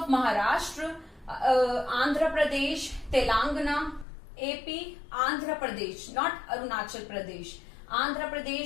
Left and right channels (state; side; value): drops out; right; at 4.0 s